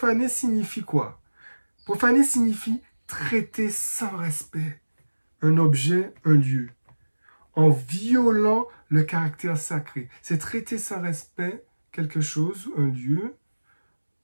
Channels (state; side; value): inverted; both; correlation -1.00